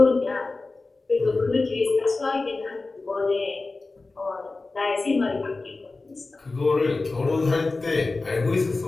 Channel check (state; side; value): quieter; right; 3.5 dB